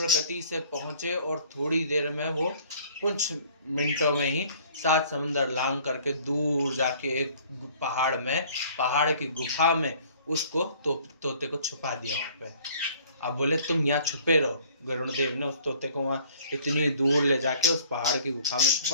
गति से पहुंचे और थोड़ी देर में वो कुछ मिनटों में ही 7 समुंदर लांग करके दूर जाके एक पहाड़ की गुफा में उसको तोते को छुपा दिया वहां पे। अब बोले तुम यहाँ छुपे रहो। गरुड़ देव ने उस तोते को वहाँ इतनी दूर ले जाके उस पहाड़ की गुफा में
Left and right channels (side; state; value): both; inverted; correlation -0.54